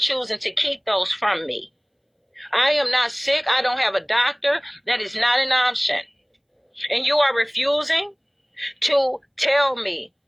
to keep those from me. I am not sick. I don't have a doctor. That is not an option. And you are refusing to tell me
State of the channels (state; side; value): identical; both; correlation 1.00